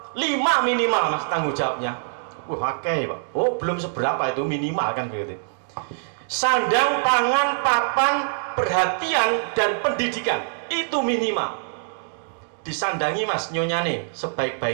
5 minimal, Mas, tanggung jawabnya. Wah, oke, Pak. Oh, belum seberapa itu minimal kan begitu. Sandang, pangan, papan, perhatian dan pendidikan itu minimal. Disandangi Mas nyonyane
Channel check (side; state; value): left; silent; digital silence